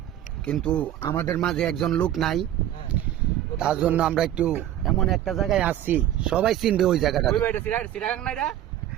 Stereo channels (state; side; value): quieter; left; 12.1 dB